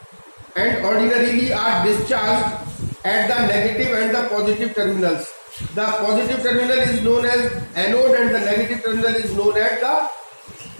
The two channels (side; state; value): both; inverted; correlation -1.00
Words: and ordinarily are discharged at the negative and the positive terminals. The positive terminal is known as anode and the negative terminal is known as the